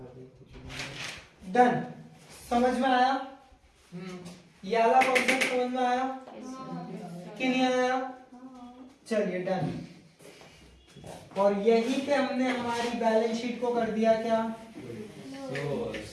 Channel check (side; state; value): both; identical; correlation 1.00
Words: डन। समझ में आया? ये वाला कॉन्सेप्ट समझ में आया कि नहीं आया? चलिए डन। और यहीं पे हमने हमारी बैलेंस शीट को कर दिया क्या?